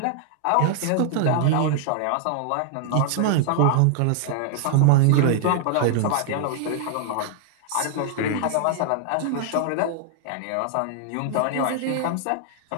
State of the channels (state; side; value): different; both; correlation 0.00